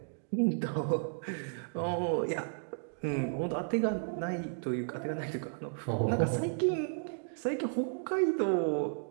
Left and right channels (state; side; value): silent; left; digital silence